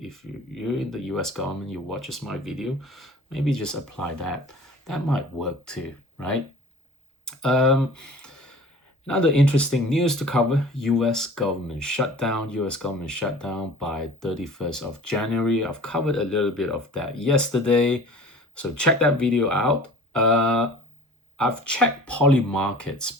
in the US government, you watches my video, maybe just apply that. That might work too, right? Um, Another interesting news to cover, US government shutdown. US government shutdown by 31st of January. I've covered a little bit of that yesterday. So check that video out. I've checked Polymarket's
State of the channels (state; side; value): normal; both; correlation 0.44